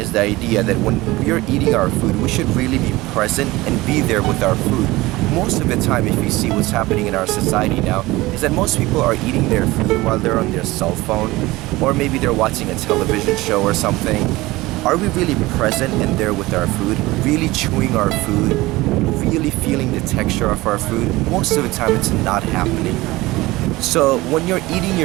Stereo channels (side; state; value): left; quieter; 19.8 dB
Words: the idea that when we're eating our food, we should really be present and be there with our food. Most of the time, if you see what's happening in our society now, is that most people are eating their food while they're on their cell phone, or maybe they're watching a television show or something. Are we really present and there with our food, really chewing our food, really feeling the texture of our food? Most of the time it's not happening. So when you're eating